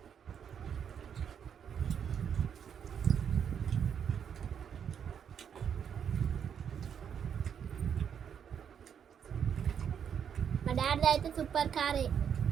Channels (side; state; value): left; quieter; 8.0 dB